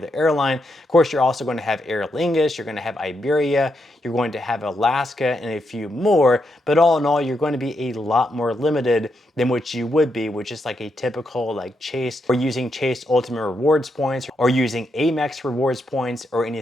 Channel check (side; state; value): both; normal; correlation 0.82